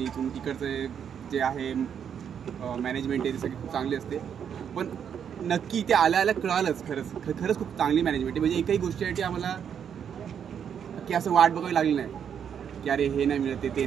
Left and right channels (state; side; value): quieter; left; 8.1 dB